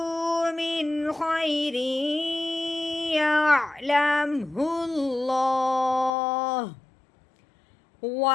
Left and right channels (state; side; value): drops out; right; at 6.1 s